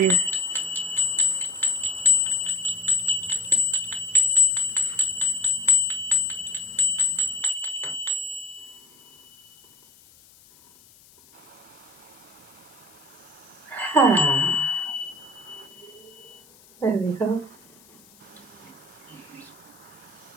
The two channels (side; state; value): left; noise; hiss, 26 dB below the sound